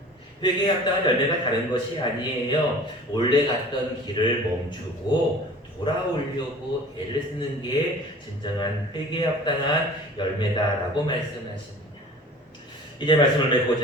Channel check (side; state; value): both; normal; correlation 0.43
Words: 회개에 합당한 열매가 다른 것이 아니에요. 원래 갔던 길을 멈추고 돌아오려고 애를 쓰는 게 진정한 회개에 합당한 열매다라고 말씀하십니다. 이제 말씀을